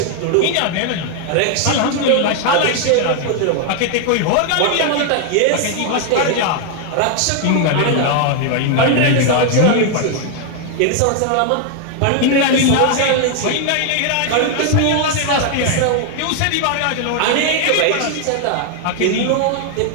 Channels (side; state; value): both; different; correlation 0.00